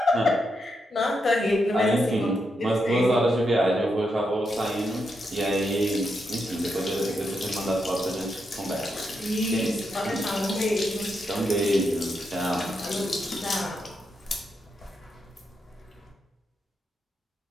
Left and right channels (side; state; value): both; normal; correlation 0.83